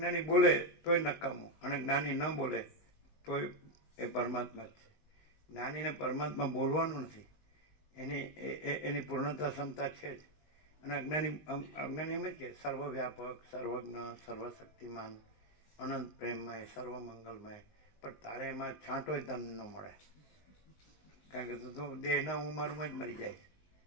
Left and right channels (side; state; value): right; late; 19 ms